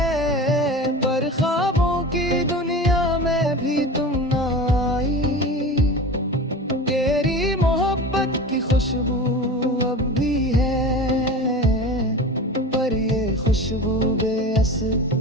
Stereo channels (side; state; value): both; normal; correlation 0.32